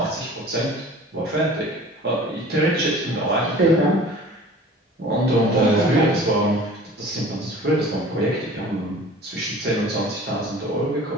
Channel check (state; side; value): normal; both; correlation 0.44